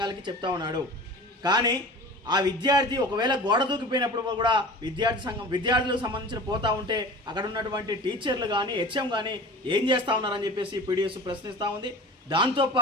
చెప్తా ఉన్నాడు. కానీ ఆ విద్యార్థి ఒకవేళ గోడ దూకిపోయినప్పుడు కూడా విద్యార్థులకు సంబంధించిన పోతా ఉంటే అక్కడ ఉన్నటువంటి టీచర్లు కానీ హెచ్ఎం కానీ ఏం చేస్తూ ఉన్నారని చెప్పేసి పీడిఎస్ ప్రశ్నిస్తూ ఉంది.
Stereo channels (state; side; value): normal; both; correlation 0.38